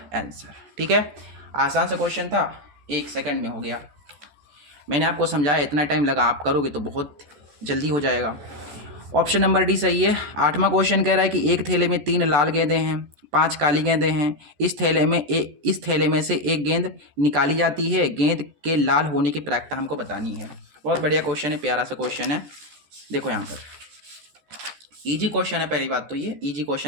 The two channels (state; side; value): late; left; 14 ms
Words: आंसर। ठीक है, आसान सा क्वेश्चन था, 1 सेकंड में हो गया। मैंने आपको समझाया, इतना टाइम लगा, आप करोगे तो बहुत जल्दी हो जाएगा। ऑप्शन नंबर डी सही है। 8वां क्वेश्चन कह रहा है कि एक थैले में 3 लाल गेंदें हैं, 5 काली गेंदें हैं। इस थैले में से एक गेंद निकाली जाती है, गेंद के लाल होने की प्रायिकता हमको बतानी है। बहुत बढ़िया क्वेश्चन है, प्यारा सा क्वेश्चन है। देखो यहाँ पर इजी क्वेश्चन है, पहली बात तो ये इजी